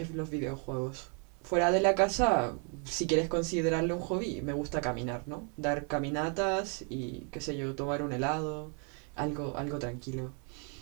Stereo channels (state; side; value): quieter; left; 39.5 dB